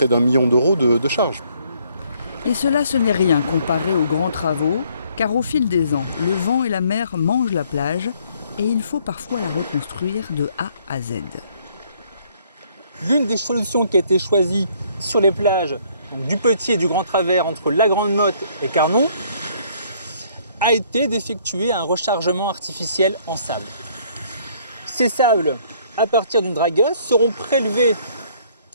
d'1 million d'euros de charges. Et cela, ce n'est rien comparé aux grands travaux, car au fil des ans, le vent et la mer mangent la plage et il faut parfois la reconstruire de A à Z. L'une des solutions qui a été choisie sur les plages donc du Petit et du Grand Travers entre la Grande Motte et Carnon a été d'effectuer un rechargement artificiel en sable. Ces sables, à partir d'une dragueuse, seront prélevés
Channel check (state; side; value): inverted; both; correlation -0.63